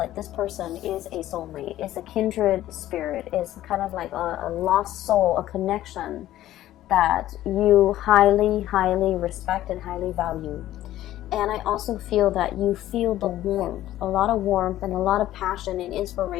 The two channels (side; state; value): right; quieter; 13.9 dB